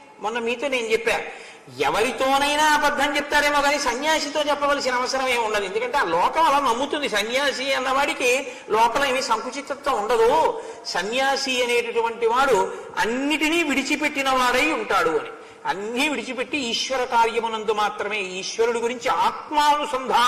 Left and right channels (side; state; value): both; identical; correlation 1.00